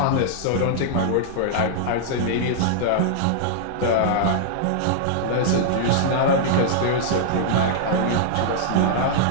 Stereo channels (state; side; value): different; both; correlation -0.01